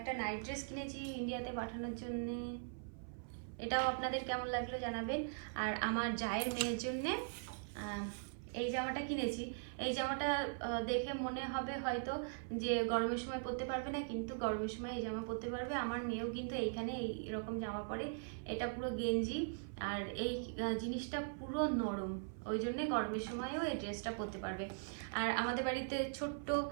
নাইট ড্রেস কিনেছি ইন্ডিয়াতে পাঠানোর জন্য, এটাও আপনাদের কেমন লাগলো জানাবেন। আর আমার জায়ের মেয়ের জন্যে এই জামাটা কিনেছি। এই জামাটা দেখে মনে হবে হয়তো যে গরমের সময় পরতে পারবে না, কিন্তু গরমের সময় এই জামা পরতে পারবে। আমার মেয়েও কিন্তু এইখানে এইরকম জামা পরে, এটা পুরো গেঞ্জি আর এই জিনিসটা পুরো নরম, ওই জন্যে গরমের সময়ও এই ড্রেসটা পরতে পারবে। আর আমাদের বাড়িতে ছোট্ট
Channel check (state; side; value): silent; left; 51 dB below the other